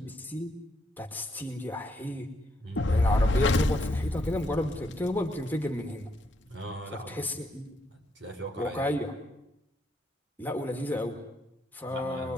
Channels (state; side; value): normal; both; correlation 0.75